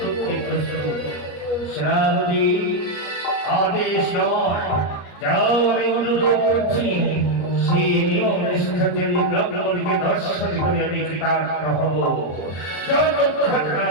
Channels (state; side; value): late; right; 34 ms